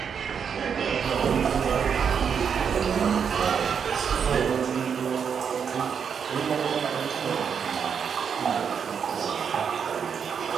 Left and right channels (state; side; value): quieter; left; 7.0 dB